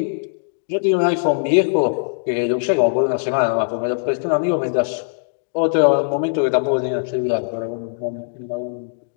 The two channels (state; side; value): silent; right; digital silence